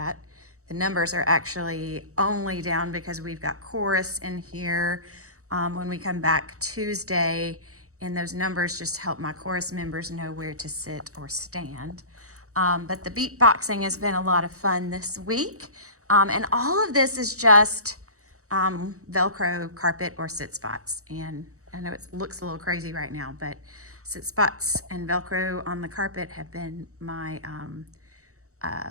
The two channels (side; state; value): left; late; 0.65 ms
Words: The numbers are actually only down because we've got chorus in here when we come back Tuesday, and those numbers just help my chorus members know where to sit or stand. But the beatboxing has been a lot of fun this week. And all of this is just Velcro carpet or sit spots. And I know it looks a little crazy right now, but sit spots and Velcro on the carpet have been my